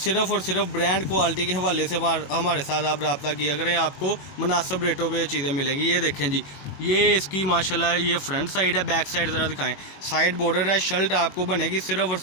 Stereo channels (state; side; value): late; right; 21 ms